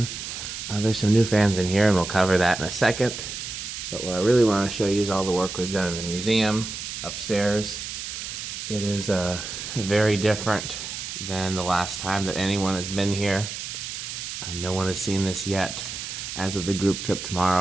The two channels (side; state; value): right; noise; hiss, 7 dB below the sound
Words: There's some new fans in here and we'll cover that in a second. But what I really want to show you is all the work we've done in the museum upstairs. It is very different than the last time that anyone has been here. No one has seen this yet. As of the group trip